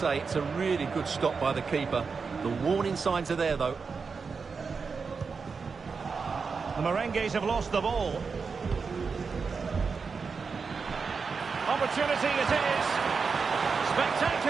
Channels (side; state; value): left; quieter; 5.1 dB